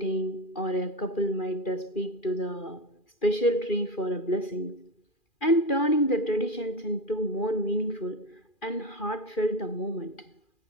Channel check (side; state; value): right; late; 2.4 ms